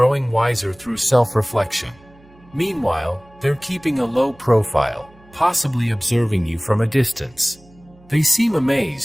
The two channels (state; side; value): noise; right; hum, 27 dB below the sound